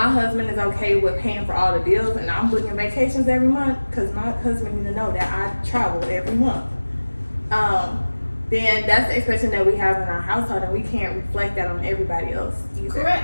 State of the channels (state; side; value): inverted; both; correlation -1.00